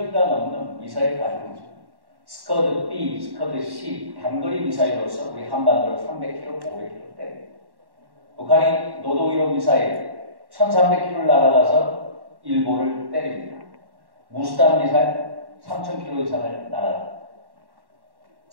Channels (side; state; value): left; late; 1.1 ms